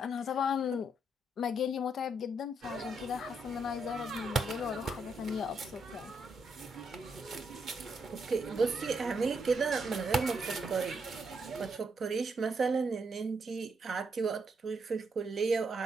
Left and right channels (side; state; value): both; normal; correlation 0.77